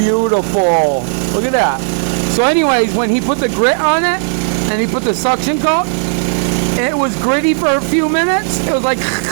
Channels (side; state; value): left; silent; digital silence